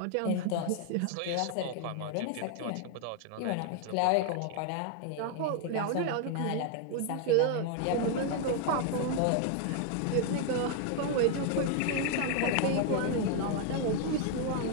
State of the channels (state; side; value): different; both; correlation 0.00